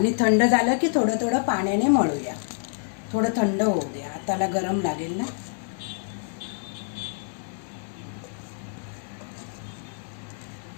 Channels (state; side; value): silent; right; digital silence